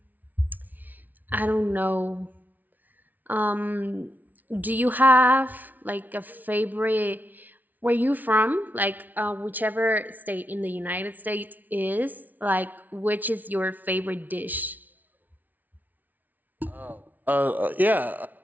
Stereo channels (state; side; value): late; left; 0.081 ms